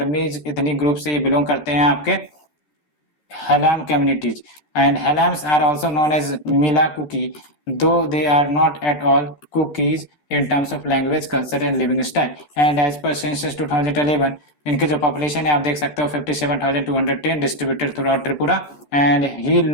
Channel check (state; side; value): late; right; 13 ms